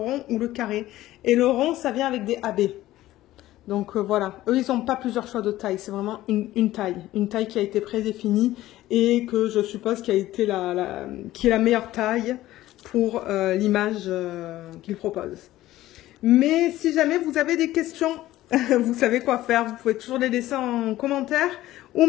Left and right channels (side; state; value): right; quieter; 15.4 dB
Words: ou le carré. Et le rond, ça vient avec des AB. Donc voilà, eux ils n'ont pas plusieurs choix de taille, c'est vraiment une taille qui a été prédéfinie et que je suppose qui a été qui est la meilleure taille pour l'image qu'il propose. Mais si jamais vous avez des questions, vous savez quoi faire. Vous pouvez toujours les laisser en commentaire ou